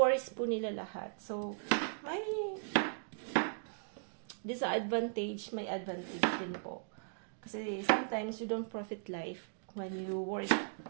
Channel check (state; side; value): silent; left; digital silence